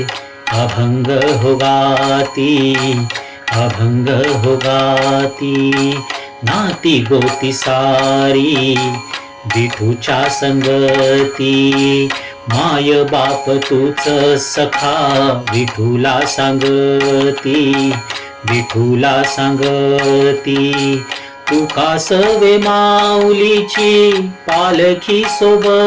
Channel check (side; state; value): both; identical; correlation 1.00